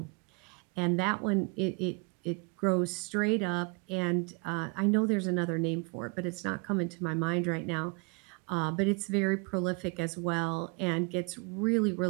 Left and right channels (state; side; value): quieter; left; 30.9 dB